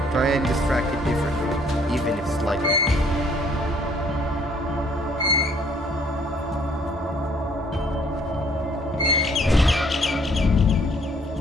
Try and distract it differently, even if slightly.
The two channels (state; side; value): normal; both; correlation 0.62